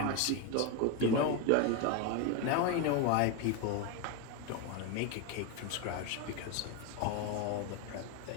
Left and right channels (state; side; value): different; both; correlation 0.03